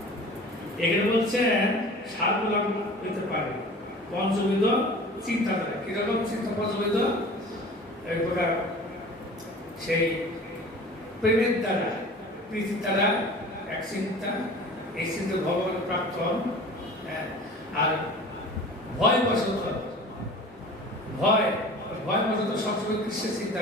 এখানে বলছেন সারগুলা হইতে পারে। পঞ্চবিধ চিন্তাধারা, কিরকম চিন্তা পঞ্চবিধ? এই প্রকার সেই প্রেমের দ্বারা, প্রীতির দ্বারা এক চিন্তা, এই চিন্তা ভগবানের প্রাপ্ত। আর ভয় বশত, ভয় বশত সবসময় কৃষ্ণের চিন্তা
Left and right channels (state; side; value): normal; both; correlation 0.41